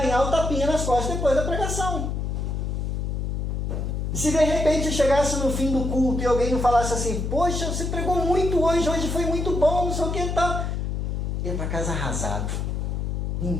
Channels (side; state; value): left; noise; hum, 1 dB below the sound